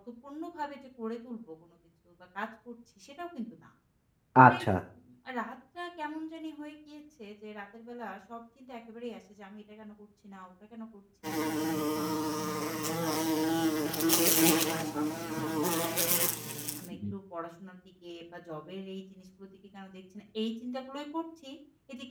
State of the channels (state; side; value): identical; both; correlation 1.00